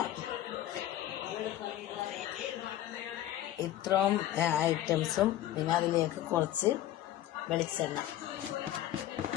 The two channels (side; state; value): right; quieter; 13.1 dB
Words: ഇത്രയും ഐറ്റംസും. പിന്നെ അതിലേക്ക് കുറച്ച് വെളിച്ചെണ്ണ,